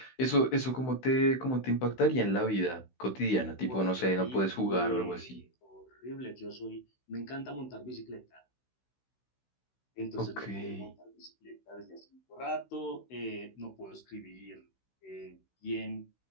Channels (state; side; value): late; right; 16 ms